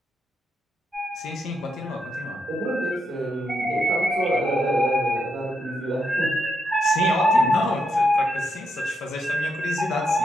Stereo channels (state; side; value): normal; both; correlation 0.81